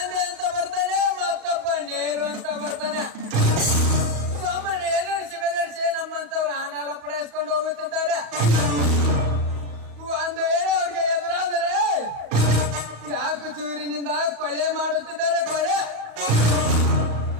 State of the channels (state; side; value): late; left; 34 ms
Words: ಅಂತ ಬರ್ತಾನೆ, ಮತ್ತೊಬ್ಬ ನೆಹರು ಅಂತ ಬರ್ತಾನೆ. ಸುಮ್ಮನೆ ಎದುರಿಸಿ ಬೆದರಿಸಿ ನಮ್ಮಂತವ್ರು ಹಣ ಪಡೆಸ್ಕೊಂಡು ಹೋಗುತ್ತಿದ್ದಾರೆ. ಒಂದು ವೇಳೆ ಅವ್ರಿಗೆ ಎದುರಾದರೆ ಚಾಕು ಚೂರಿನಿಂದ ಕೊಲೆ ಮಾಡುತ್ತಿದ್ದಾರೆ. ಕೊಲೆ